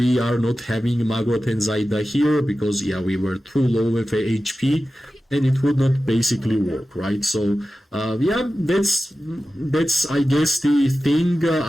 are not having Magrot and Zaida here, because yeah, we were too low with HP and it would not basically work, right? So yeah, that's I guess the thing.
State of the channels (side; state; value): both; normal; correlation 0.94